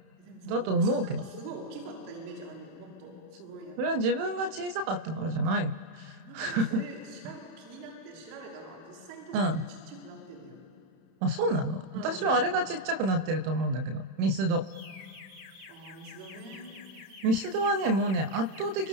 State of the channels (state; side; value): late; left; 31 ms